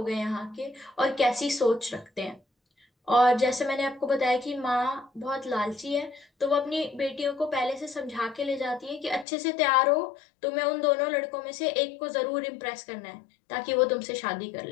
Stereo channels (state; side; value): drops out; right; at 9.2 s